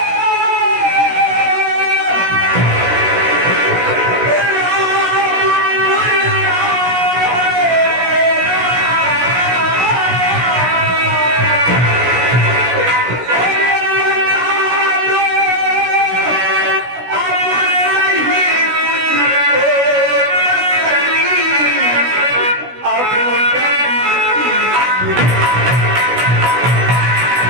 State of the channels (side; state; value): left; late; 16 ms